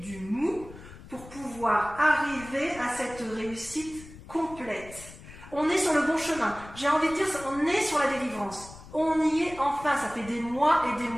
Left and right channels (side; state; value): left; noise; rumble, 17 dB below the sound